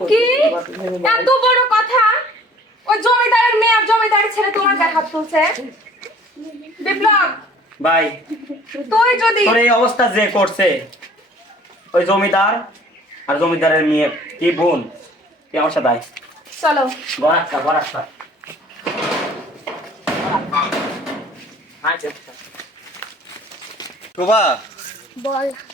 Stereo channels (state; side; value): normal; both; correlation 0.52